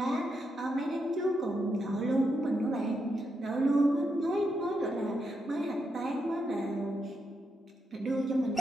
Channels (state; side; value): normal; both; correlation 0.83